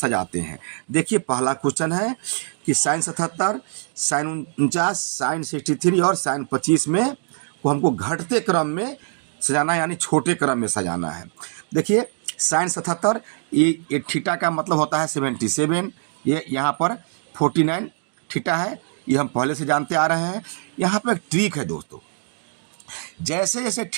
हैं। देखिए, पहला क्वेश्चन है कि साइन 77, साइन 49, साइन 63 और साइन 25 में को हमको घटते क्रम में सजाना यानी छोटे क्रम में सजाना है। देखिए, साइन 77 ये थीटा का मतलब होता है 77, ये यहाँ पर 49 थीटा है, ये हम पहले से जानते आ रहे हैं। यहाँ पर एक ट्रिक है दोस्तों, जैसे जैसे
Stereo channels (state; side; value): silent; left; digital silence